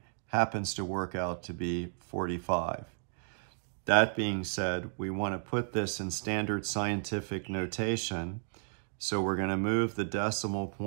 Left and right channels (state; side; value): silent; left; digital silence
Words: happens to work out to be 45. That being said, we want to put this in standard scientific notation. So we're going to move the decimal